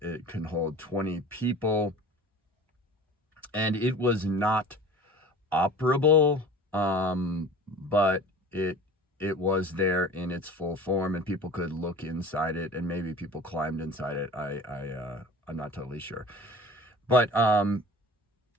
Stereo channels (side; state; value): both; normal; correlation 0.41